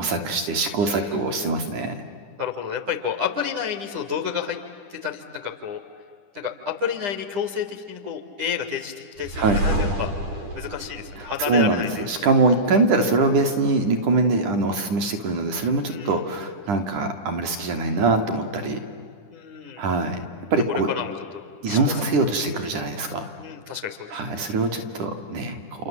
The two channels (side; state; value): left; late; 10 ms